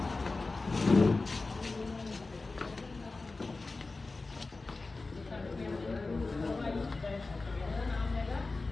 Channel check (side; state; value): right; quieter; 3.6 dB